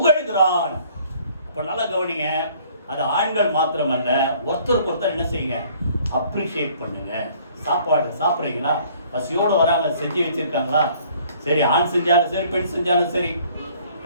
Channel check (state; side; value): inverted; both; correlation -0.58